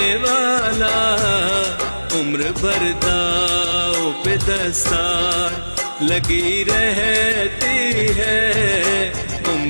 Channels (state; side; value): inverted; both; correlation -1.00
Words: वाला। उम्र भर दाव पे दस्तार लगी रहती है,